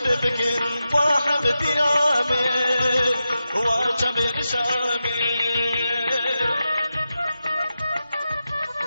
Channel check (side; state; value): both; inverted; correlation -0.91